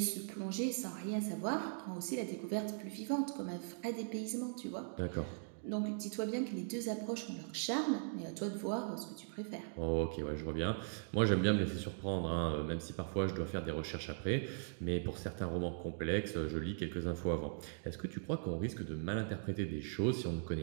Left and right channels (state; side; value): silent; left; digital silence